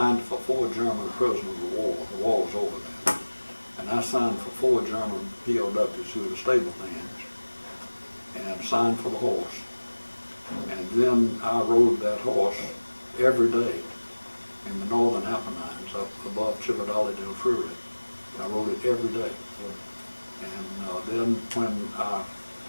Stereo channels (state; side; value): inverted; both; correlation -1.00